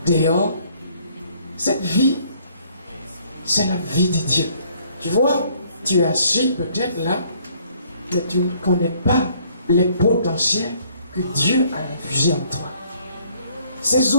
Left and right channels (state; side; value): inverted; both; correlation -0.63